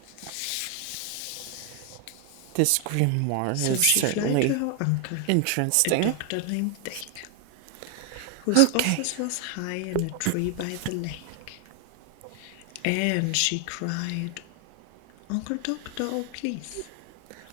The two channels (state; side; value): different; both; correlation 0.01